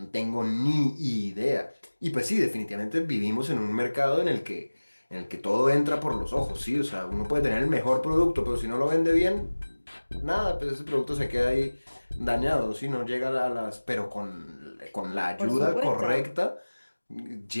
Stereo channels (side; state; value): both; inverted; correlation -1.00